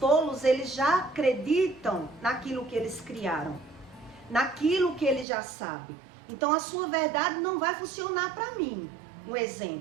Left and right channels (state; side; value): drops out; left; at 5.2 s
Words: eles já acreditam naquilo que eles criaram, naquilo que eles já sabem. Então, a sua verdade não vai funcionar para mim. Um